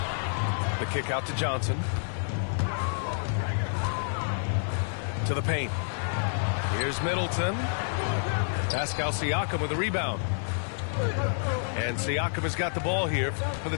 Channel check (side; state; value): right; silent; 59 dB below the other